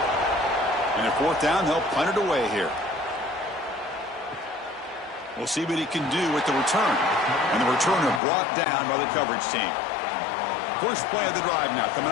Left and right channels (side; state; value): right; drops out; at 8.2 s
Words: And at 4th down, they'll punt it away here. We'll see what he can do with the return. And the returner brought down by the coverage team. First play of the drive now, coming